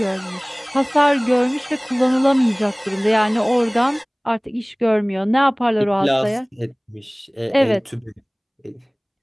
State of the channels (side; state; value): both; identical; correlation 1.00